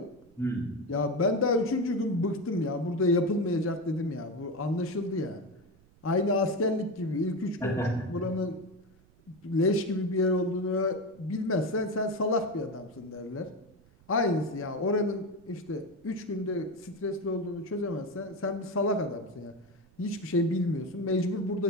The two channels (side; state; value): right; noise; rumble, 28 dB below the sound